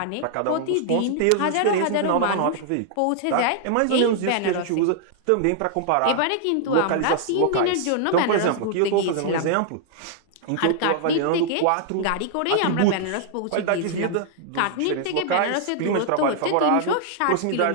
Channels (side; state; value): both; different; correlation 0.00